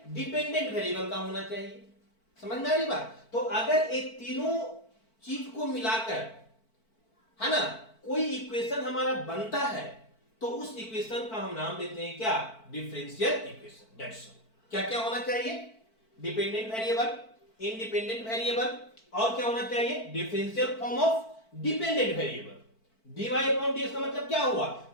डिपेंडेंट वेरिएबल का होना चाहिए। समझ में आ रही बात? तो अगर ये तीनों चीज को मिलाकर, है ना, कोई इक्वेशन हमारा बनता है तो उस इक्वेशन का हम नाम देते हैं क्या? Differential equation. That's all. क्या क्या होना चाहिए? डिपेंडेंट वेरिएबल, इंडिपेंडेंट वेरिएबल, और क्या होना चाहिए? Differential form of dependent variable. dy upon dx का मतलब क्या हुआ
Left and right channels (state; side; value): late; right; 4.5 ms